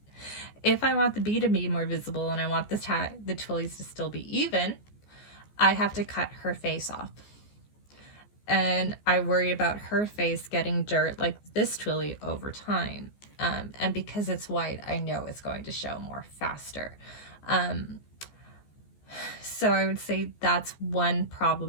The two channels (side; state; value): right; late; 14 ms